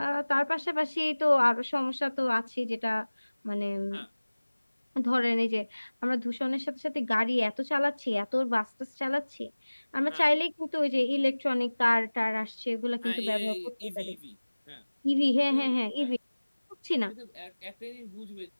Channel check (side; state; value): both; inverted; correlation -1.00